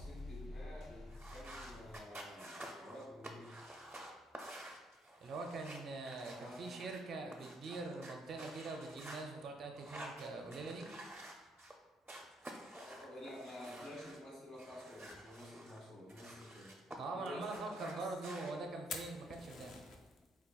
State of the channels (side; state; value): both; normal; correlation 0.71